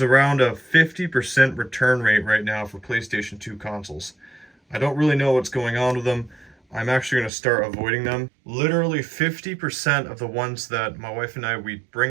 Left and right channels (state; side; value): drops out; left; at 7.3 s